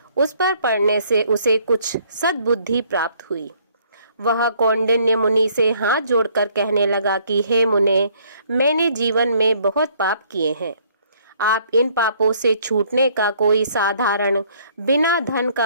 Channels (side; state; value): both; inverted; correlation -0.63